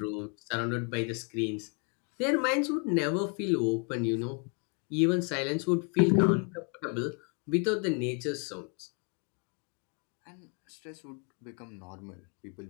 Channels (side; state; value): right; quieter; 37.4 dB